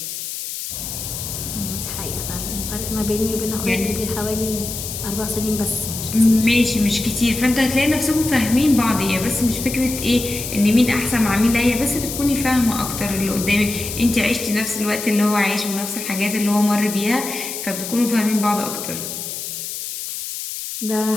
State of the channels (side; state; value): left; noise; hiss, 7 dB below the sound